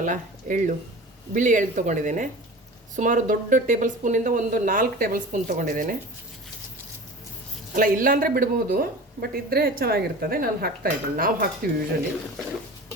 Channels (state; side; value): normal; both; correlation 0.36